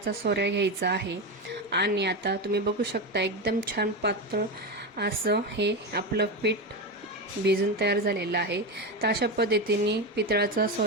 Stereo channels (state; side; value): normal; both; correlation 0.16